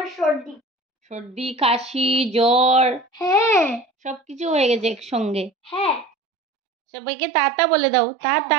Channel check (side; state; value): left; drops out; at 6.1 s